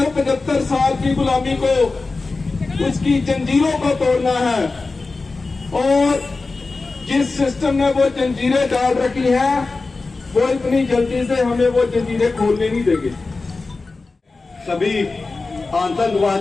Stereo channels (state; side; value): quieter; right; 3.8 dB